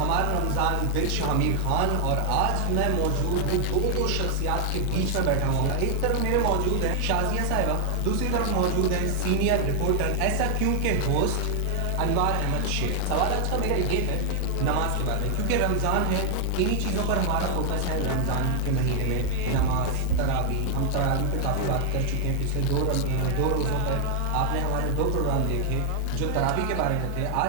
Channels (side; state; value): both; different; correlation 0.00